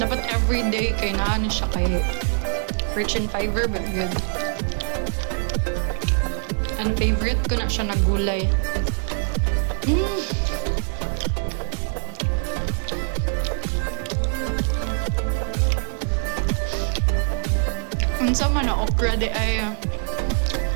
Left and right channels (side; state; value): left; silent; 63 dB below the other